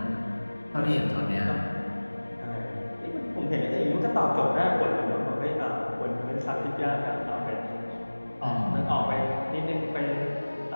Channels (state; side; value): inverted; both; correlation -1.00